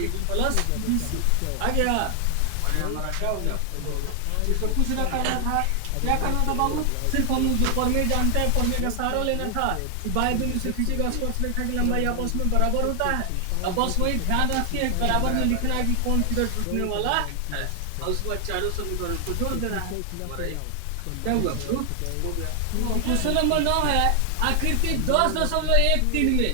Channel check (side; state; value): both; different; correlation 0.00